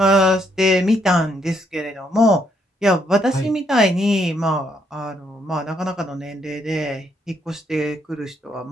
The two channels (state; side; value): normal; both; correlation 0.73